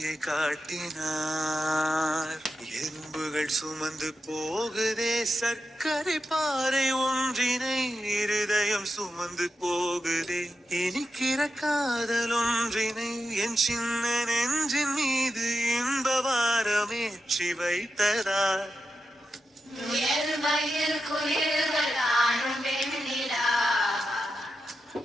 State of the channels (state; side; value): normal; both; correlation 0.89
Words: காட்டினார் எறும்புகள் சுமந்து போகுதே சர்க்கரை பாறை ஒன்றினை இருதயம் சுமந்து போகுதே இனிக்கிற காதல் ஒன்றினை என் சின்ன நெஞ்சின் மீது இன்பவாரமேற்றி வைத்ததார்